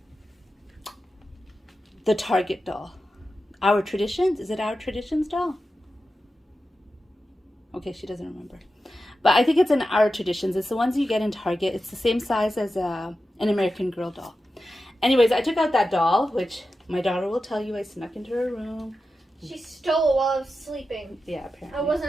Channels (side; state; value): both; normal; correlation 0.92